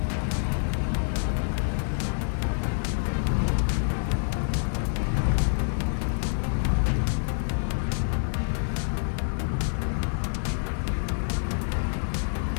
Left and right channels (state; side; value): silent; right; 60 dB below the other